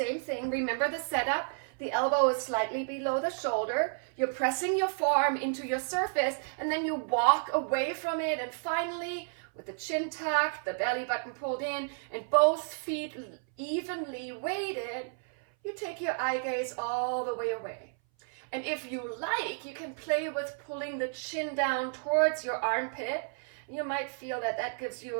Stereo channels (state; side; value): silent; left; 57 dB below the other